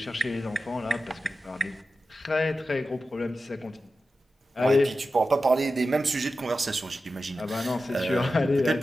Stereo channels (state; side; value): normal; both; correlation 0.92